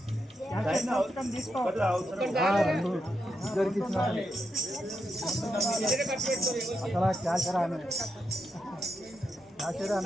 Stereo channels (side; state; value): both; normal; correlation 0.84